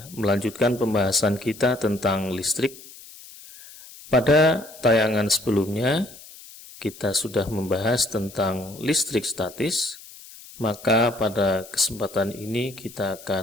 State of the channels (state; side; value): noise; left; hiss, 19 dB below the sound